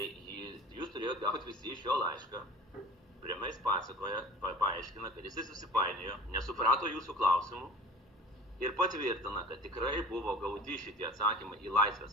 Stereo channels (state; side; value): normal; both; correlation 0.42